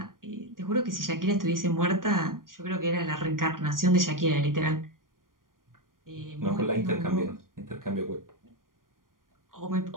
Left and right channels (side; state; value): left; late; 0.90 ms